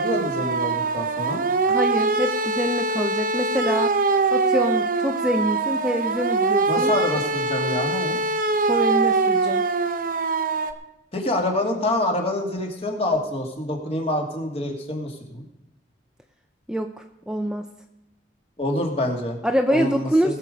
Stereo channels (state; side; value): normal; both; correlation 0.16